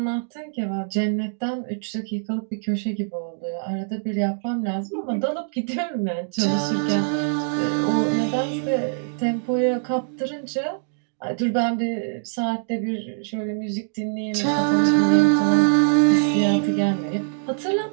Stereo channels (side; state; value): left; silent; digital silence